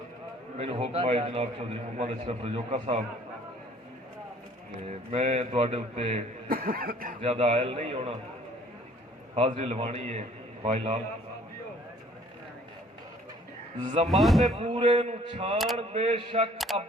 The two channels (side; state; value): both; normal; correlation 0.56